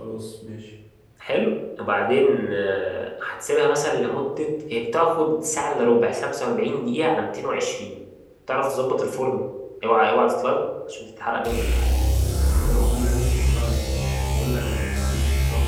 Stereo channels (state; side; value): identical; both; correlation 1.00